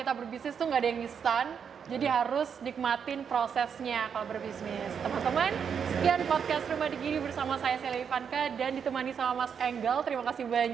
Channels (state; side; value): quieter; left; 7.1 dB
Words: berbisnis tuh nggak ada yang instan, Jadi harus nikmatin prosesnya kalau berbisnis. Teman-teman, sekian podcast Rumah Digiri bersama saya Sheila Ivanka dan ditemani sama Mas Enggal. Terima kasih